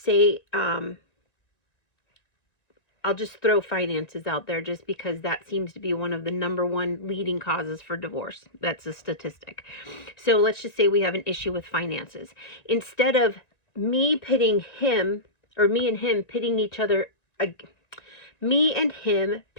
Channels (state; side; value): late; right; 1.9 ms